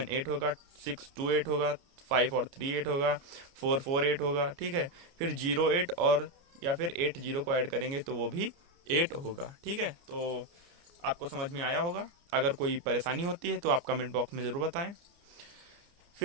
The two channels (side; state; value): left; late; 29 ms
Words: 8 होगा, 6 2 8 होगा, 5 और 3 8 होगा, 4 4 8 होगा। ठीक है, फिर 0 8 और या फिर 8 0 को ऐड करेंगे तो वो भी 8 होगा। ठीक है, तो आपको समझ में आया होगा। अगर कोई परेशानी होती है तो आप कमेंट बॉक्स में ज़रूर बताएं।